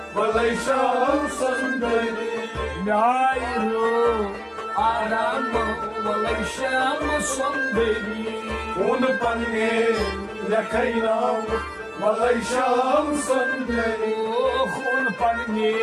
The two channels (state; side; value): identical; both; correlation 1.00